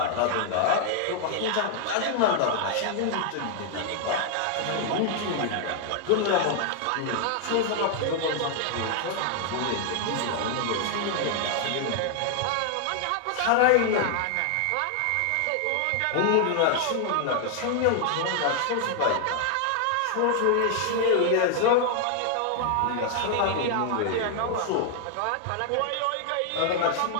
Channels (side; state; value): both; different; correlation 0.00